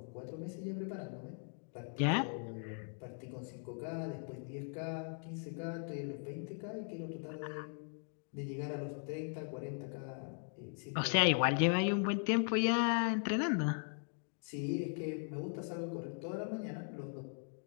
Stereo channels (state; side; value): silent; right; 52 dB below the other